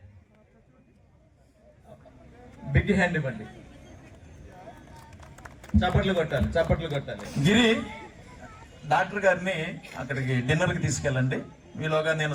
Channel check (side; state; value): both; identical; correlation 1.00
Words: బిగ్ హ్యాండ్ ఇవ్వండి. చప్పట్లు కొట్టాలి. గిరి డాక్టర్ గారిని అక్కడికి డిన్నర్కి తీసుకెళ్ళండి. మీలోగా నేను